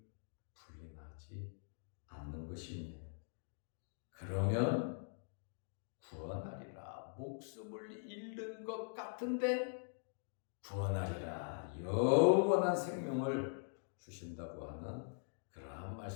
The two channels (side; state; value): right; silent; digital silence